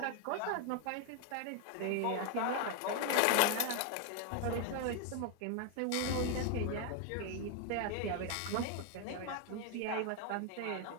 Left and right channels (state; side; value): different; both; correlation 0.00